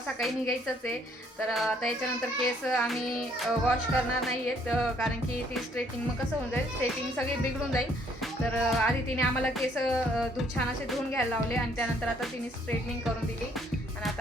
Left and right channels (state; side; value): normal; both; correlation 0.65